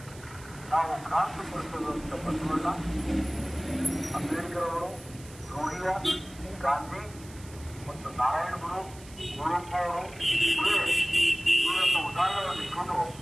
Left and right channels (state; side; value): noise; right; hiss, 20 dB below the sound